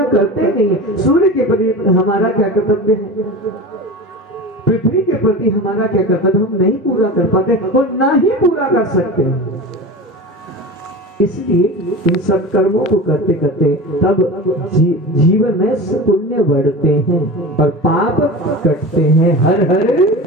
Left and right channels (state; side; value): normal; both; correlation 0.31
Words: करते नहीं है। सूर्य के प्रति हमारा क्या कर्तव्य है, पृथ्वी के प्रति हमारा क्या कर्तव्य, हम नहीं पूरा कर पाते और ना ही पूरा कर सकते हैं। इसलिए इन सत्कर्मों को करते करते तब जीवन में पुण्य बढ़ते हैं और पाप कटते हैं। हर हर